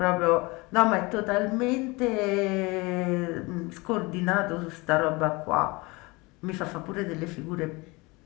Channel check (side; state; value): right; quieter; 24.8 dB